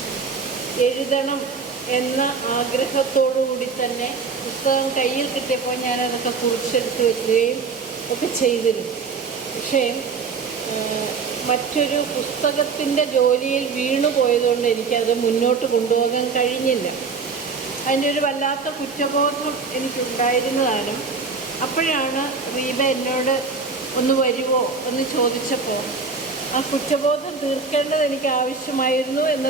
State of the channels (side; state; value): left; quieter; 4.9 dB